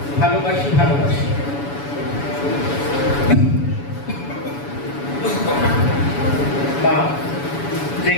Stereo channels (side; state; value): right; late; 7.1 ms